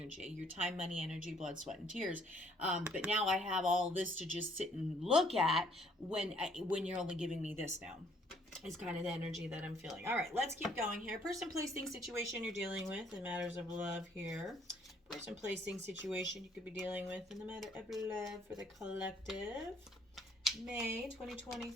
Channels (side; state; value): both; normal; correlation 0.64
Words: your time, money, energy, blood, sweat, and tears. But now I have all this to just sit and look at when you're only giving me this now. Is kind of the energy that I'm feeling. All right, let's keep going here. Person, place, thing, situation you're dealing with in matters of love here. Person, place, thing, situation you could be dealing with in the matter of love for the collective. May